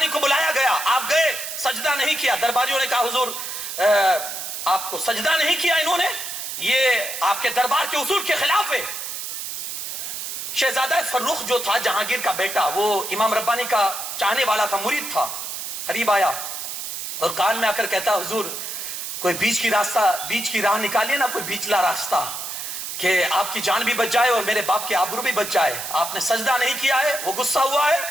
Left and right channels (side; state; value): right; noise; hiss, 6 dB below the sound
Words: کو بلایا گیا، آپ گئے، سجدہ نہیں کیا۔ درباریوں نے کہا حضور آپ کو سجدہ نہیں کیا انہوں نے، یہ آپ کے دربار کے اصول کے خلاف ہے۔ شہزادہ فروخ جو تھا جہانگیر کا بیٹا، وہ امام ربانی کا چاہنے والا تھا، مرید تھا، قریب آیا اور کان میں آ کر کہتا حضور کوئی بیچ کی راہ نکالیے نا، کوئی بیچلا راستہ کہ آپ کی جان بھی بچ جائے اور میرے باپ کے آبرو بھی بچ جائے۔ آپ نے سجدہ نہیں کیا ہے، وہ غصہ ہوا ہے